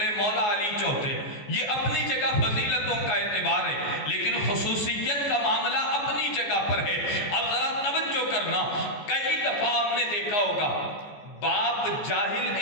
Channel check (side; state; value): right; late; 14 ms